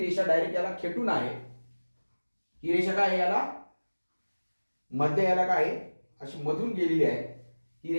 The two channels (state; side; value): inverted; both; correlation -1.00